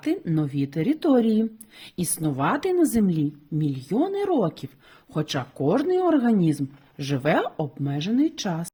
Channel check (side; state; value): both; identical; correlation 1.00